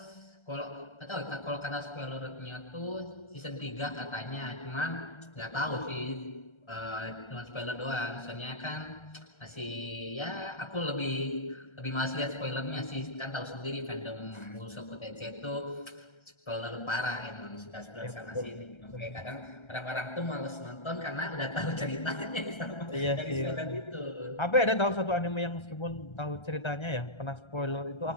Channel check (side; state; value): right; late; 1.3 ms